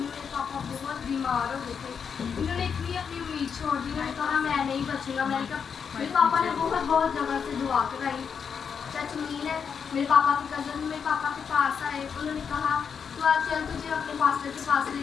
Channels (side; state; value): right; quieter; 6.7 dB